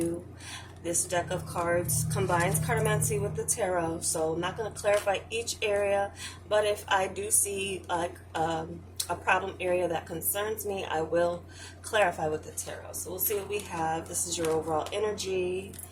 This deck of cards combines cartomancy with the tarot, so I'm not going to clarify each area, but if I do see like a problem area that concerns me, I will clarify with the tarot. So we'll see what we have. This is your overall energy,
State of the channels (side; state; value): both; identical; correlation 1.00